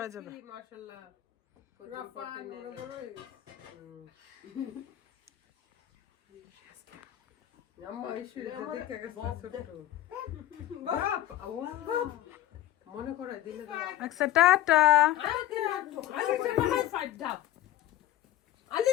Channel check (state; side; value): quieter; right; 13.5 dB